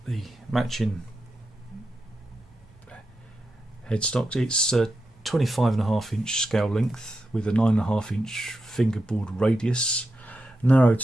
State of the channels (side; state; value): both; normal; correlation 0.88